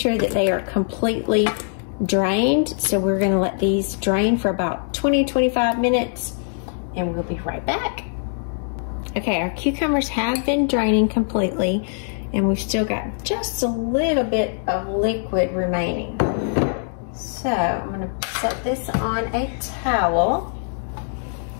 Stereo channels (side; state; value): right; silent; digital silence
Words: that they are completely drained. So we're gonna let these drain for about 20, 25 minutes, and we'll be right back. Okay, our cucumbers have been draining completely, and we've still got just a little bit of liquid remaining. So I'm gonna set this on a towel.